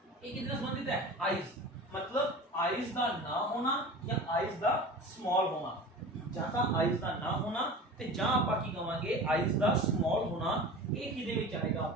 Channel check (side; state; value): both; normal; correlation 0.35